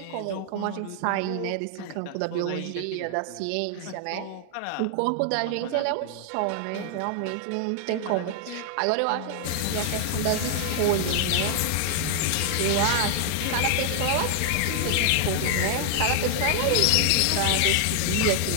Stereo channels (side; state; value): both; different; correlation 0.00